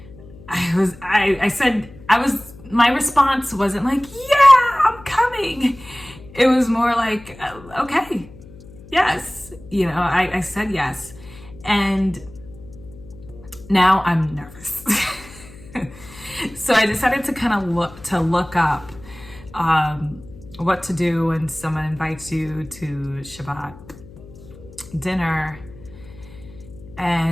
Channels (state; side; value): noise; left; hum, 20 dB below the sound